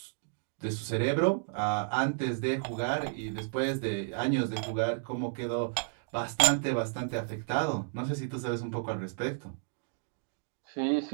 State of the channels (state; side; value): silent; left; digital silence